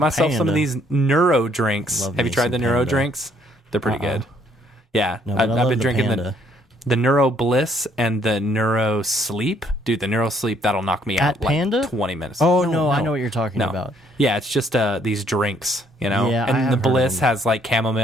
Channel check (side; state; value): both; normal; correlation 0.67